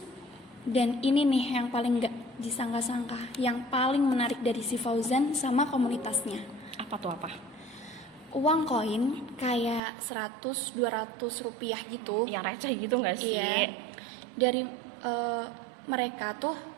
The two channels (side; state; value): left; drops out; at 9.8 s